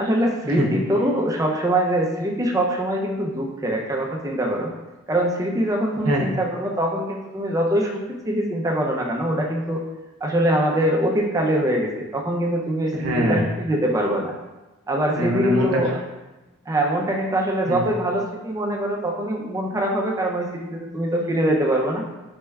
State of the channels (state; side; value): normal; both; correlation 0.55